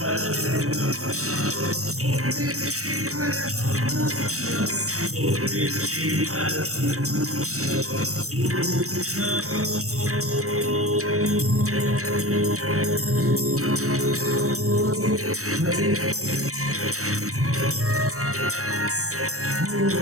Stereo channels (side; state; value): left; late; 0.65 ms